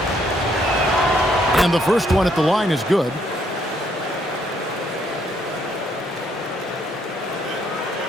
And the first one at the line is good.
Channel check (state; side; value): normal; both; correlation 0.70